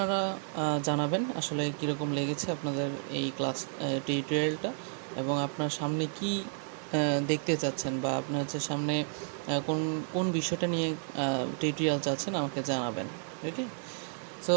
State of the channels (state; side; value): silent; left; 57 dB below the other